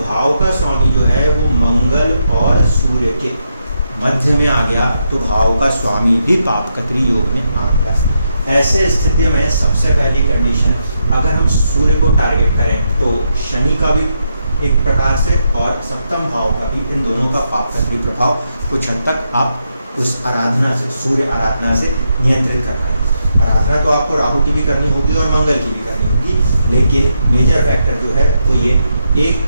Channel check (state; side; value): inverted; both; correlation -0.82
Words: का स्वामी जो है वो मंगल और सूर्य के मध्य में आ गया, तो भाव का स्वामी भी पाप कत्री योग में आ गया। ऐसे स्थिति में सबसे पहली कंडीशन, अगर हम सूर्य को टारगेट करें तो शनि का भी एक प्रकार से और सप्तम भाव का भी, इन दोनों का पाप कत्री प्रभाव कुछ हद तक आप उस आराधना से, सूर्य आराधना से नियंत्रित कर पाएंगे। आराधना तो आपको राहु की भी करनी होगी और मंगल की भी करनी होगी, लेकिन मेजर फैक्टर जो है वो ये, एक